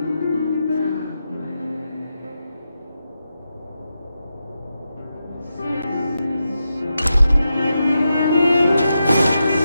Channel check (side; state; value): both; inverted; correlation -0.87